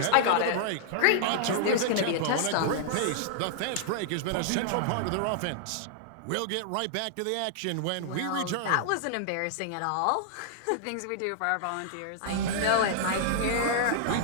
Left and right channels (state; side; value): different; both; correlation -0.01